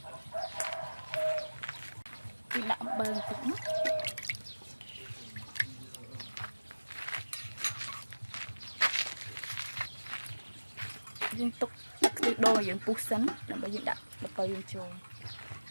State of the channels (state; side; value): inverted; both; correlation -1.00